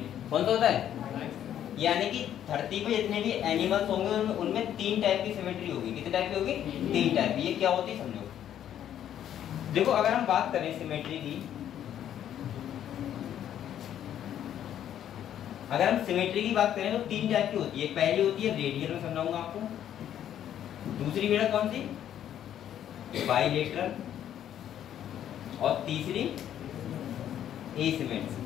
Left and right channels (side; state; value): right; quieter; 10.5 dB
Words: कौन सा होता है? यानी कि धरती पे जितने भी एनिमल्स होंगे उनमें 3 टाइप की सिमेट्री होगी। कितने टाइप की होगी? 3 टाइप की। ये क्या होती है समझो। देखो अगर हम बात करें सिमेट्री की, अगर हम सिमेट्री की बात करें तो 3 टाइप की होती है। पहली होती है रेडियल, में समझाऊंगा आपको। दूसरी बेटा कौन सी? बाइलेटरल। और तीसरी